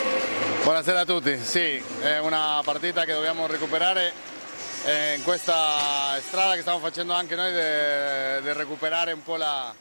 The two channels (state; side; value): inverted; both; correlation -1.00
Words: Buonasera a tutti, sì, è una partita che dobbiamo recuperare. In questa strada che stiamo facendo anche noi di recuperare un po' la